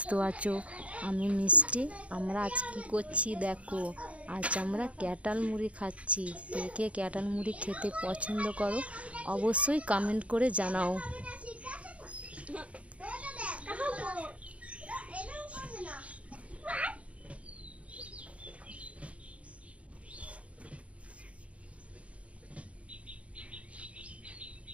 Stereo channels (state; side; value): late; left; 0.064 ms